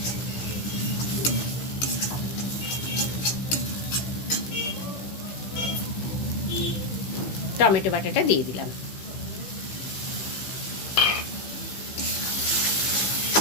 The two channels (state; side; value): late; right; 16 ms